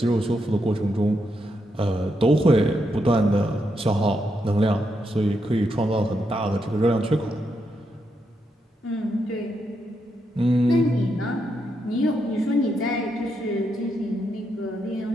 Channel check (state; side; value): normal; both; correlation 0.81